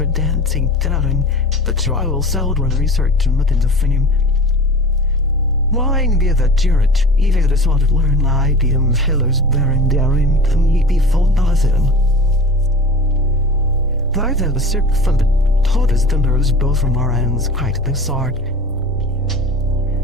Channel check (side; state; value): both; normal; correlation 0.37